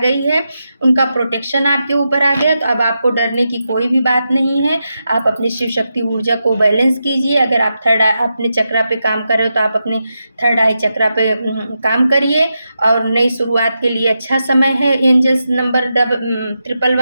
है, उनका प्रोटेक्शन आपके ऊपर आ गया। तो अब आपको डरने की कोई भी बात नहीं है। आप अपनी शिव शक्ति ऊर्जा को बैलेंस कीजिए। अगर आप थर्ड आई अपने चक्रा पे काम कर रहे हो तो आप अपने थर्ड आई चक्रा पे काम करिए। और नई शुरुआत के लिए अच्छा समय है। एंजल्स नंबर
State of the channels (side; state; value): both; inverted; correlation -0.87